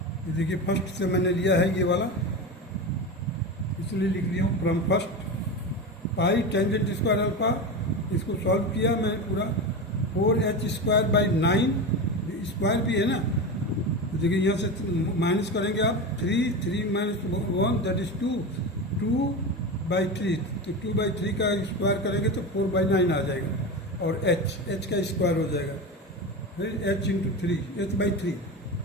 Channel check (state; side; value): normal; both; correlation 0.22